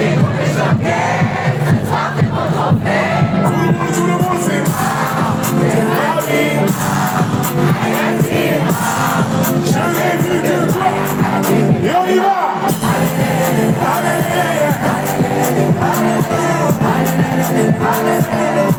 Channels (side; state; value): both; identical; correlation 1.00